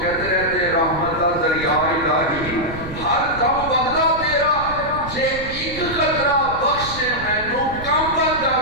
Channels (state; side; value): noise; right; rumble, 12 dB below the sound